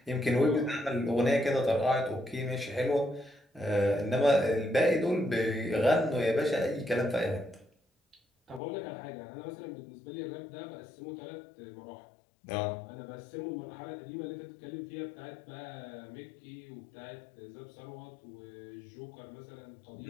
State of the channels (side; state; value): right; drops out; at 8.6 s